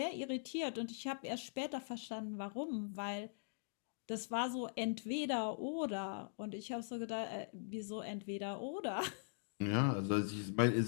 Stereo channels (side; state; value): right; silent; digital silence